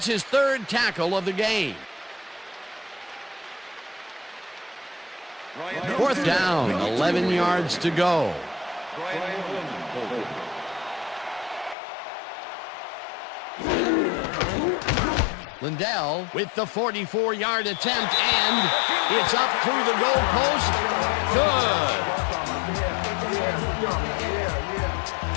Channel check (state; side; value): drops out; right; at 11.8 s